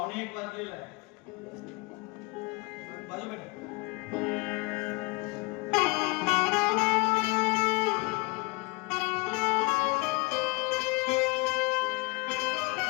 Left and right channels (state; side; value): quieter; right; 25.8 dB